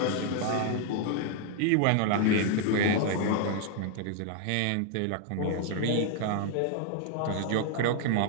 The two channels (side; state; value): both; different; correlation 0.00